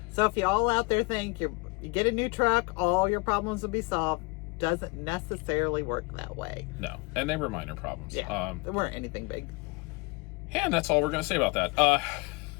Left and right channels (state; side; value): quieter; right; 26.7 dB